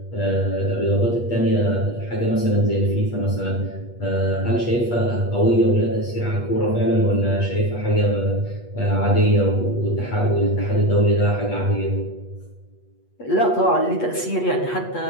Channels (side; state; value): right; late; 8.3 ms